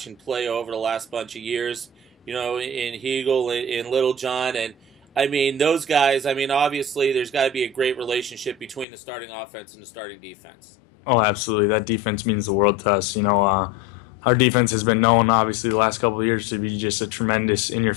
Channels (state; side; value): drops out; right; at 8.8 s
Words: play over the last bunch of years. In Hegel, in Littlejohn, and I mean, those guys, obviously there's got to be a great relationship between the starting offense and the starting defense. Oh, absolutely. That defense means the world to us. Our defense has been known, obviously, the last couple of years to be just a tremendous